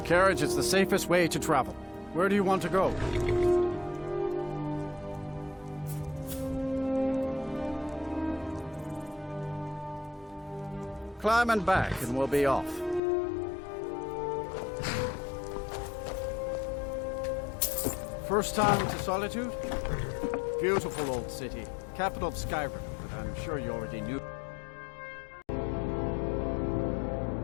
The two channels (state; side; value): drops out; right; at 13.0 s